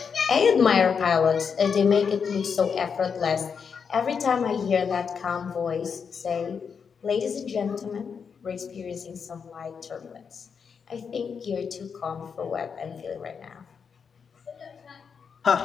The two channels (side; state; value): right; quieter; 6.3 dB